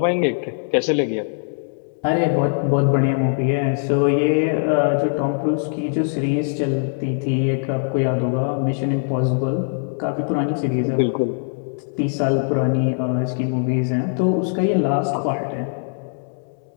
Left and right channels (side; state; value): right; silent; digital silence